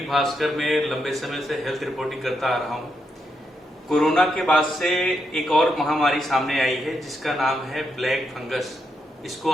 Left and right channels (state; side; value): normal; both; correlation 0.81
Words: भास्कर में लंबे समय से हेल्थ रिपोर्टिंग करता आ रहा हूं। कोरोना के बाद से एक और महामारी सामने आई है जिसका नाम है ब्लैक फंगस। इसको